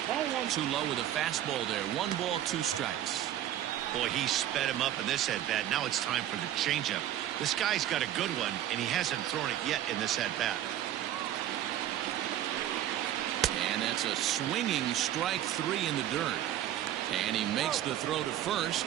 Too low with a fastball there. 1 ball, 2 strikes. Boy, he sped him up in this at-bat. Now it's time for the changeup. This guy's got a good one, and he hasn't thrown it yet in this at-bat. And that's a swinging strike 3 in the dirt. And he makes the throw to first.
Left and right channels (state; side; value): quieter; left; 12.1 dB